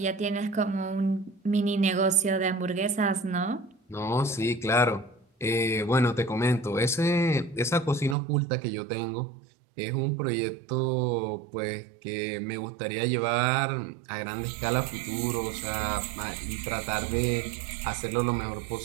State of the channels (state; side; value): drops out; left; at 8.2 s